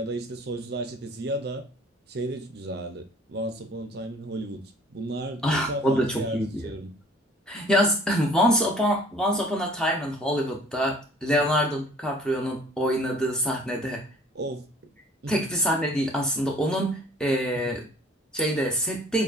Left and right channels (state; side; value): normal; both; correlation 0.52